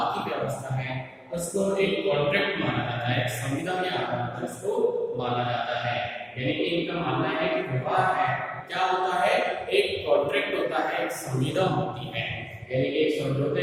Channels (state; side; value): identical; both; correlation 1.00